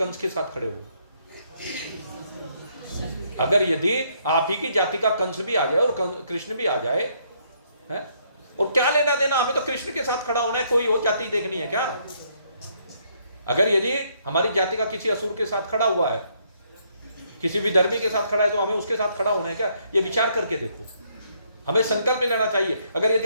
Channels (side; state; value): both; inverted; correlation -0.70